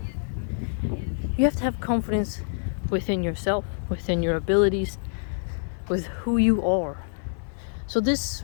You have to have confidence within yourself, within your abilities, with who you are. So this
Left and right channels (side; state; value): right; silent; digital silence